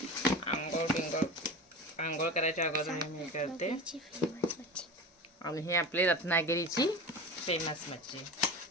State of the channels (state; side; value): normal; both; correlation 0.30